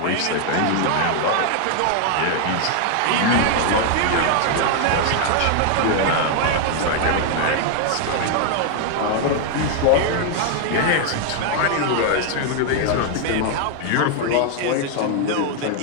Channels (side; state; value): both; different; correlation 0.00